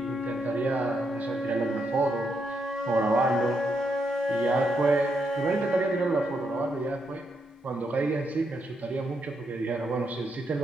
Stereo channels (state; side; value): normal; both; correlation 0.80